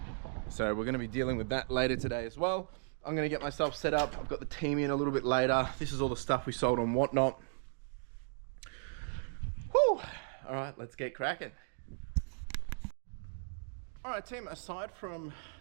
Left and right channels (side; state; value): left; silent; digital silence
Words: So we're going to be dealing with that later today as well. I'm going to get myself set up. I've got the team in a little bit later. This is all the stuff we sold on Whatnot. Whew. All right, let's get cracking. All right, team, aside from